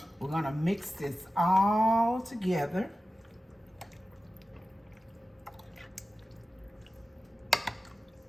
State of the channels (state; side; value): normal; both; correlation 0.95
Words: We're gonna mix this all together.